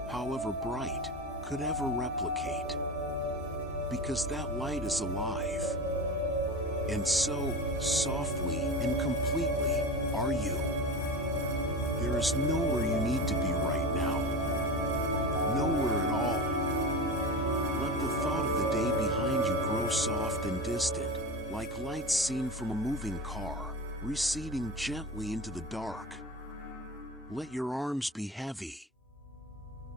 however bright, could ever replicate. Because that light is alive. And so, softly and completely, are you. There is nowhere you need to be right now. Nowhere at all. Let the thought of the day behind you grow soft and distant, like lights seen from a moving car, receding gently into the dark. Let your arms be heavy.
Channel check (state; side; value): normal; both; correlation 0.27